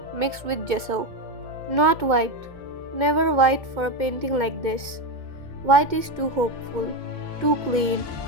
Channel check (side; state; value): left; late; 2.2 ms